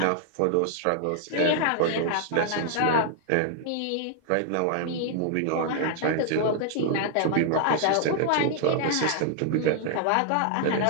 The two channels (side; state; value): both; different; correlation 0.00